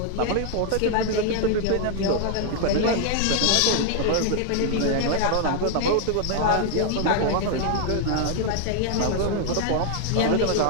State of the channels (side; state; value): both; different; correlation 0.00